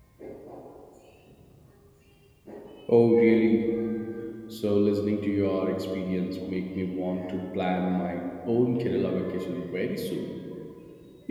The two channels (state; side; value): identical; both; correlation 1.00